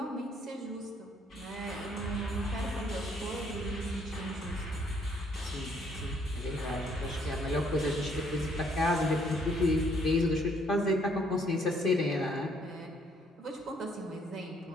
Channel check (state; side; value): normal; both; correlation 0.66